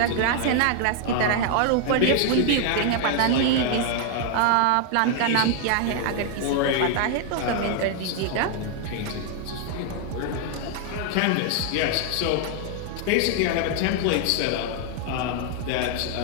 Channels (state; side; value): different; both; correlation 0.00